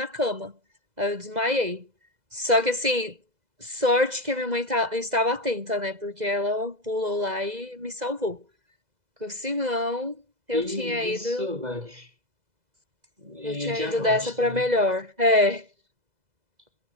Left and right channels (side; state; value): left; late; 2.0 ms